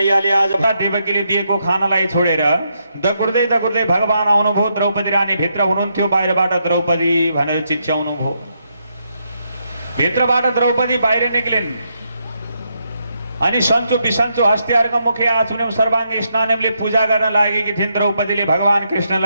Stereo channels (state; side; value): inverted; both; correlation -0.80